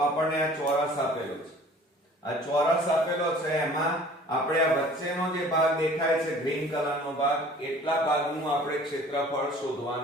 આ ચોરસ આપેલો છે આ ચોરસ આપેલો છે એમાં આપણે આ વચ્ચેનો જે ભાગ દેખાય છે ગ્રીન કલરનો ભાગ એટલા ભાગનું આપણે ક્ષેત્રફળ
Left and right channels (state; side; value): normal; both; correlation 0.49